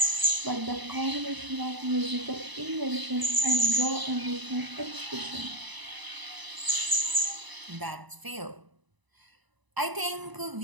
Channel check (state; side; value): late; left; 1.0 ms